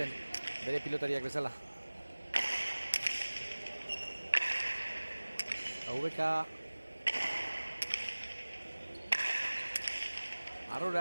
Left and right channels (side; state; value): both; inverted; correlation -1.00